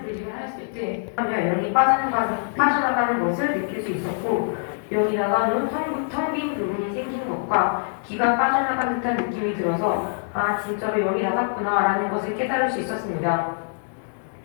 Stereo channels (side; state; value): right; silent; digital silence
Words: 분립을 했을 때 영이 빠져나가는 것을 느낄 수 있었고 영이 나간 후 텅 빈 부분이 생긴 것과 기가 빠져나간 듯한 느낌이 들어서 아 진짜로 영이 나갔구나 라는 것을 깨달을 수 있었습니다.